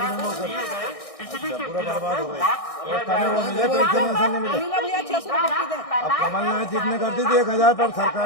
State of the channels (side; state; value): right; late; 1.6 ms